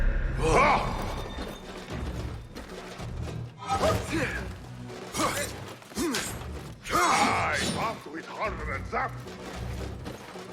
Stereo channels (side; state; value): both; identical; correlation 1.00